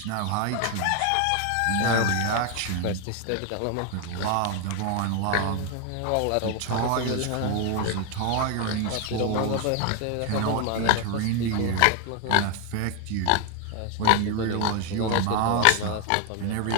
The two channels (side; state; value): both; different; correlation 0.01